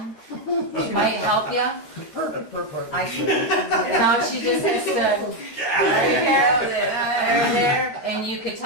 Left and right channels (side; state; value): right; late; 12 ms